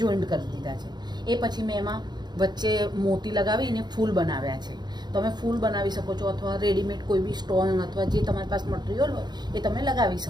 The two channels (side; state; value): left; late; 0.21 ms